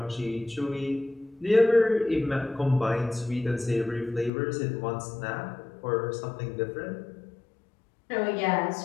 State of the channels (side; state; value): right; drops out; at 4.3 s